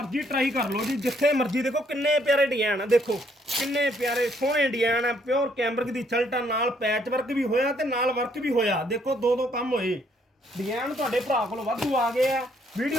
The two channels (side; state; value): both; normal; correlation 0.68